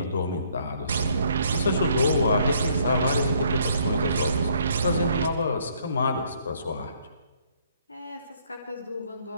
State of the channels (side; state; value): both; inverted; correlation -0.65